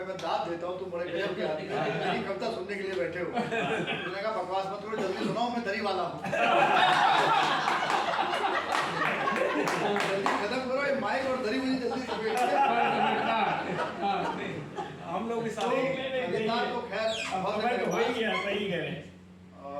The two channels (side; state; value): both; identical; correlation 1.00